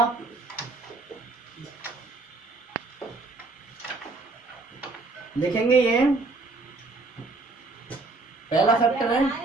लिखेंगे ये पहला फैक्टर है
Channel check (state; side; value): quieter; left; 3.4 dB